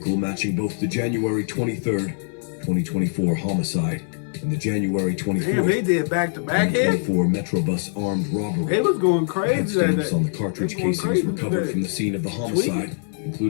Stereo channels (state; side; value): silent; right; 57 dB below the other